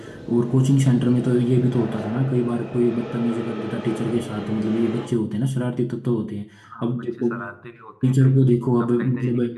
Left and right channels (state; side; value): identical; both; correlation 1.00